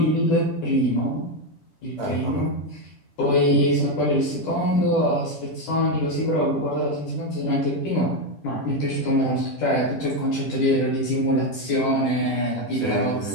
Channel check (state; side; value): late; right; 10 ms